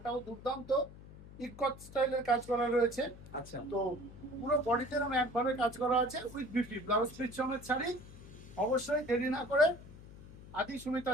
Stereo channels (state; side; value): noise; left; hum, 17 dB below the sound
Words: দুর্দান্ত ইকট স্টাইলের কাজ করা রয়েছে। আচ্ছা, তো পুরো বডিতে এরকম একভাবে কাজ করা আছে উইথ বিউটি ব্লাউজ পিস সমেত শাড়ি। অবশ্যই দেরি না করে আদি সুমিতা